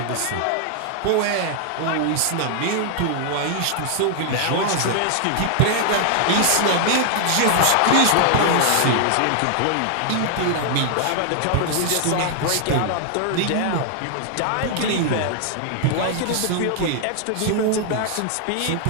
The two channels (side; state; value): both; different; correlation 0.00